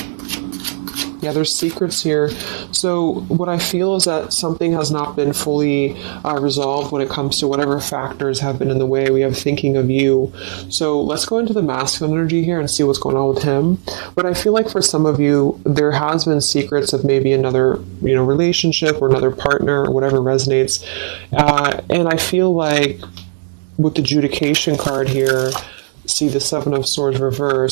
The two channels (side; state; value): left; silent; digital silence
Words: Yeah, there's secrets here. So what I feel is that something has not been fully resolved when it comes to whatever factors have been in the way. We have thinking of you. So let's go into the masculine energy here and see what's going on with him. But I feel like for some of you, there has been secrets of maybe another, relationship or another partner or whatever resonates. And I feel like with the adjudication card here, see the Seven of Swords